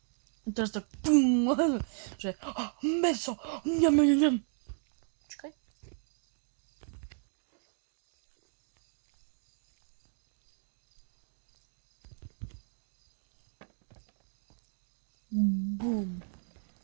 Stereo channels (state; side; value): silent; left; 54 dB below the other